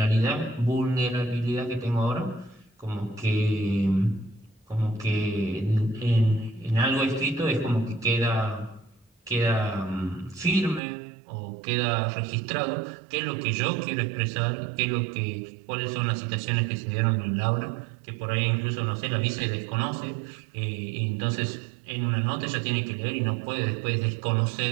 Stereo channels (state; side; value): drops out; left; at 10.8 s